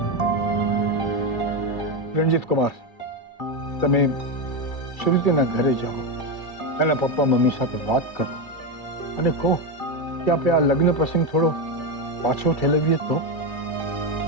રણજીત કુમાર, તમે શ્રુતિના ઘરે જાઓ, એના પપ્પા મમ્મી સાથે વાત કરો અને કહો કે આપણે આ લગ્ન પ્રસંગ થોડો પાછો ઠેલવીએ તો.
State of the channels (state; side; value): late; right; 2.3 ms